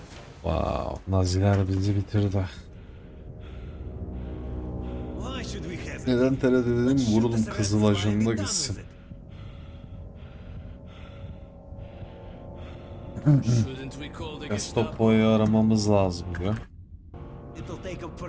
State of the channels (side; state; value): both; identical; correlation 1.00